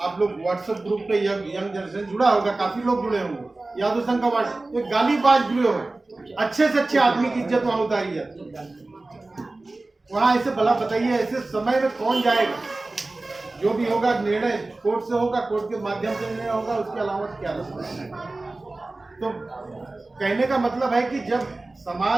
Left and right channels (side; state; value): left; quieter; 3.1 dB